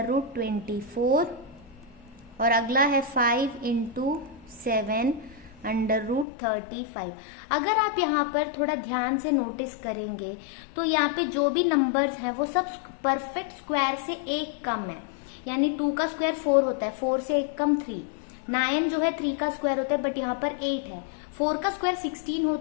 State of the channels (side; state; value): right; drops out; at 6.2 s